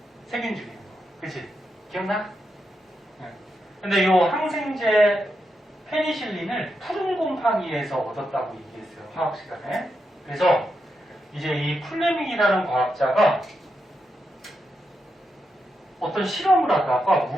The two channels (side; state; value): both; normal; correlation 0.85